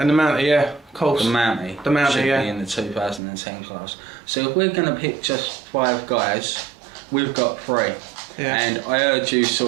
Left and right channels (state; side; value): drops out; left; at 3.2 s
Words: and the Mounty, yeah, of course. The Mounty should be in the 2010 class. So if we're going to pick just 5 guys, we've got 3. Yeah. And I heard you